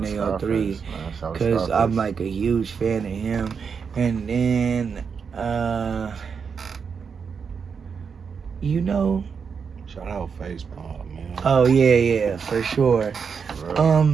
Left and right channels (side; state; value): left; quieter; 6.1 dB